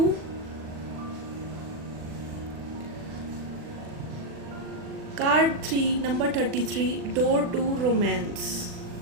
Card 3, number 33, door to romance.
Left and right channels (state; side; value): late; left; 40 ms